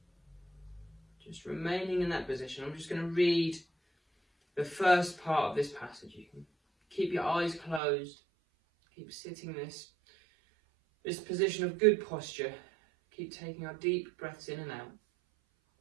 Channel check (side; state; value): left; drops out; at 7.8 s